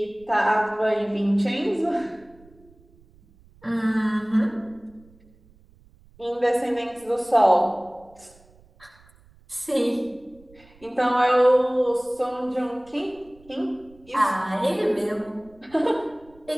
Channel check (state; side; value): noise; right; rumble, 28 dB below the sound